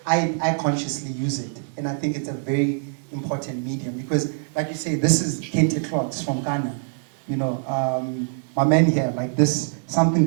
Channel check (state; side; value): silent; left; 63 dB below the other